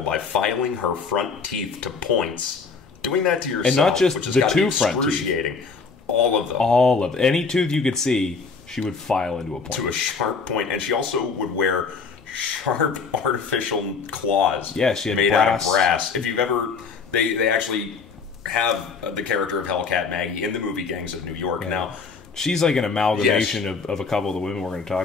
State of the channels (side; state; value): right; quieter; 5.0 dB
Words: by filing her front teeth to points. Doing that to yourself, and not just which the two front teeth. All of them. All of them. Any tooth you could see, she would file into a point. To a sharp point. And she also would wear sharp artificial claws. Yeah, she had made brass. out of brass. If you've ever... They actually have the character of Hellcat Maggie in the movie Gangs of New York. Yeah. Now, she's like an amalgamation of a couple of the women we're going to